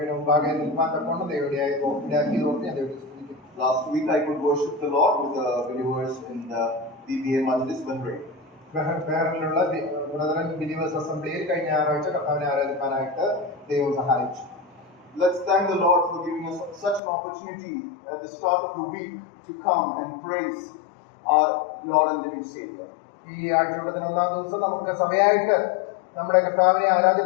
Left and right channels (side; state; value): right; drops out; at 17.0 s